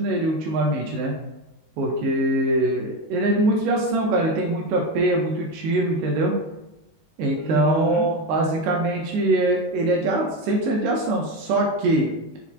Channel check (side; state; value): left; late; 19 ms